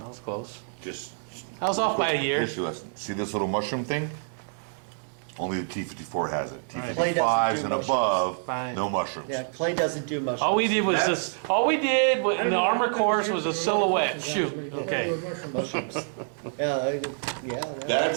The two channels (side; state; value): left; silent; digital silence